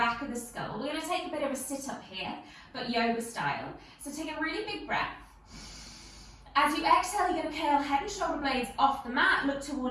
of the skull. We're going to take a bit of a sit-up here, but yoga style. So take a really big breath. As you exhale, you're going to curl head and shoulder blades off the mat, look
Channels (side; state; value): both; identical; correlation 1.00